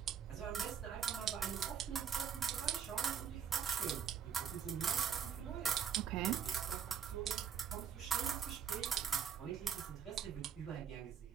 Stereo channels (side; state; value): left; quieter; 7.8 dB